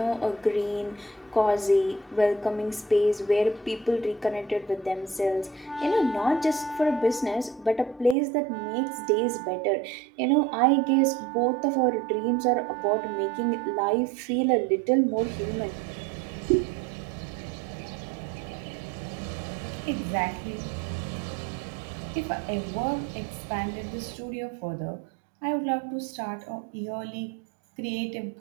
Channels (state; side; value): drops out; left; at 8.2 s